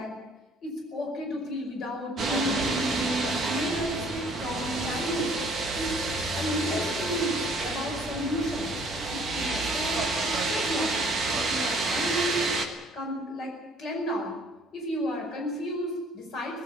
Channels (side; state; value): both; normal; correlation 0.58